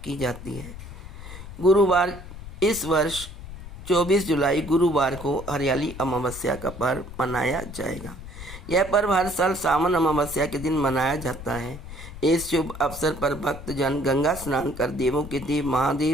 की जाती है। गुरुवार, इस वर्ष 24 जुलाई गुरुवार को हरियाली अमावस्या का पर्व मनाया जाएगा। यह पर्व हर साल सावन अमावस्या के दिन मनाया जाता है। इस शुभ अवसर पर भक्तजन गंगा स्नान कर देवों के देव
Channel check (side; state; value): left; noise; rumble, 12 dB below the sound